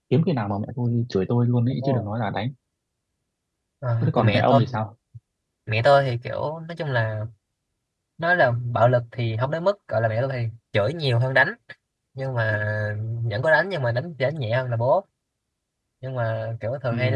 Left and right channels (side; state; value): both; identical; correlation 1.00